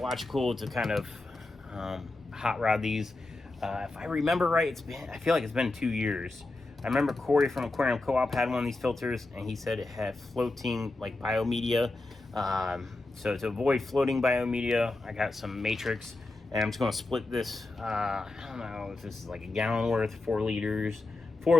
to kind of hot rod these. If I remember right, I feel like it's been 2 years. I remember Corey from Aquarium Co-op had one of these filters, and he said it had floating like biomedia. So to avoid floating biomedia, I got some Matrix, and I'm just going to split this. I don't know if this is like a gallon worth, 4 liters.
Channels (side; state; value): right; quieter; 3.0 dB